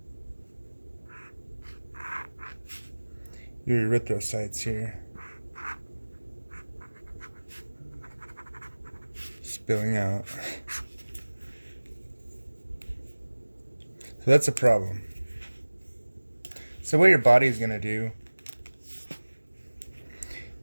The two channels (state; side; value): inverted; both; correlation -1.00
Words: your erythrocytes here spilling out. So that's a problem. So what your body is going to do